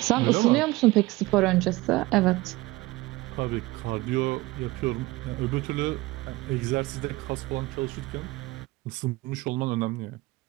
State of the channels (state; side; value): quieter; left; 20.1 dB